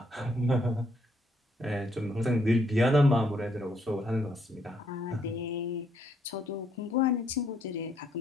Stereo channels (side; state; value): both; normal; correlation 0.71